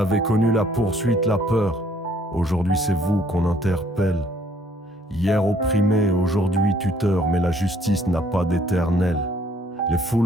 connu la poursuite, la peur. Aujourd'hui c'est vous qu'on interpelle. Hier opprimé, aujourd'hui tuteur, mais la justice n'a pas d'éternel. Les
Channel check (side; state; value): both; normal; correlation 0.63